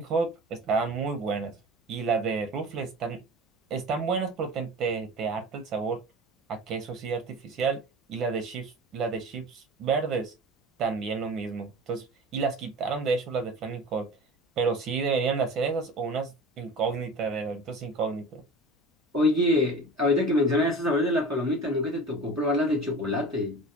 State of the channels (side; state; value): both; normal; correlation 0.37